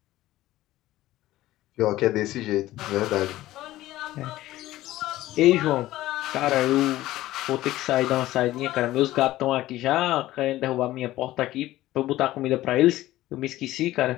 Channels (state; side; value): quieter; right; 15.8 dB